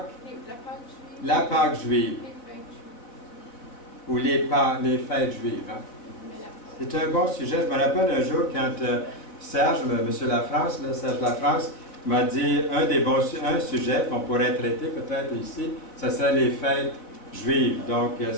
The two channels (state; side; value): late; right; 4.1 ms